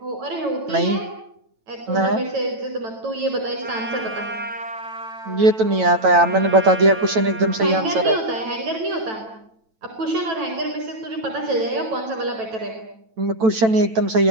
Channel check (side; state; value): left; late; 9.1 ms